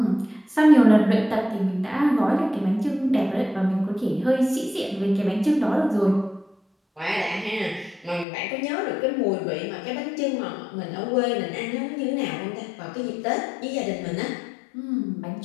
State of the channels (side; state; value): right; drops out; at 8.2 s